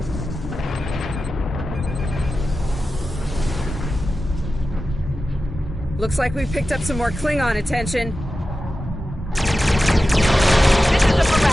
Looks like we picked up some more Klingon attention. This is the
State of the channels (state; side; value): normal; both; correlation 0.93